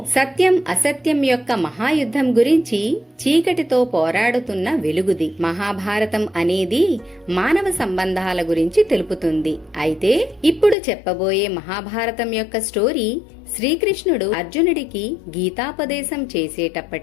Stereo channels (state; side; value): drops out; right; at 10.8 s